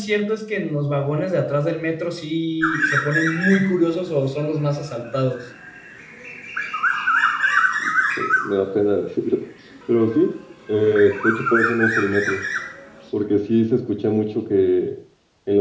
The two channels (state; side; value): identical; both; correlation 1.00